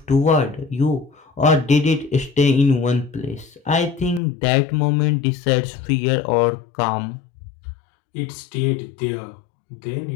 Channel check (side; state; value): right; drops out; at 4.2 s